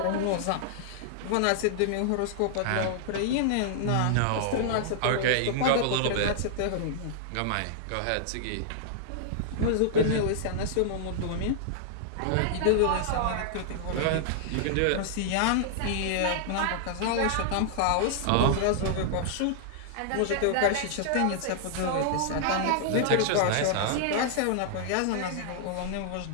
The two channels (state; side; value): different; both; correlation -0.01